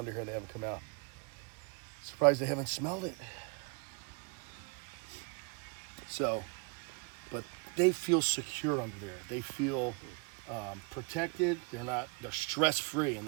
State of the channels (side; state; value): left; quieter; 31.5 dB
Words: here and they haven't come out. Surprised they haven't smelled it. So, but they feel secure under there. They feel protected. They're stress-free, and